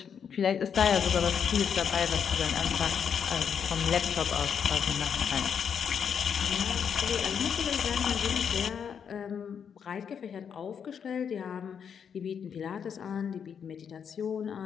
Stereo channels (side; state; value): right; quieter; 7.4 dB